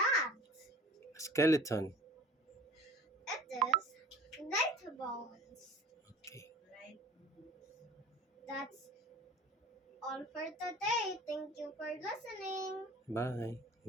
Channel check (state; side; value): normal; both; correlation 0.44